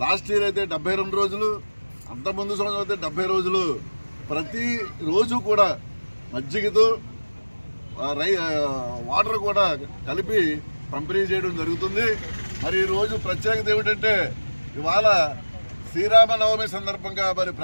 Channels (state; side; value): inverted; both; correlation -1.00